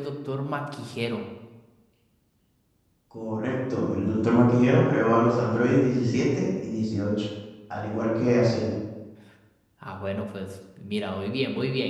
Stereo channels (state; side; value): identical; both; correlation 1.00